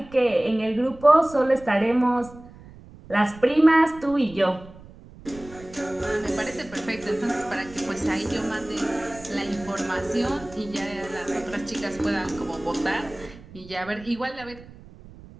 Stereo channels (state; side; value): noise; right; rumble, 19 dB below the sound